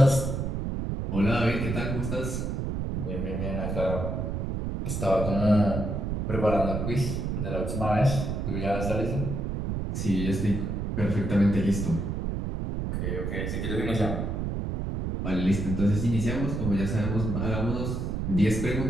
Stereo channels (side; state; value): right; noise; rumble, 2 dB below the sound